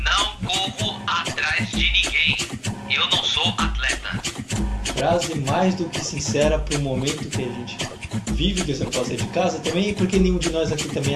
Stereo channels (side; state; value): both; identical; correlation 1.00